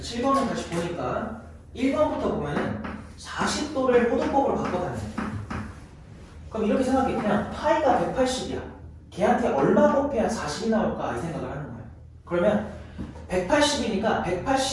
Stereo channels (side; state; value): both; identical; correlation 1.00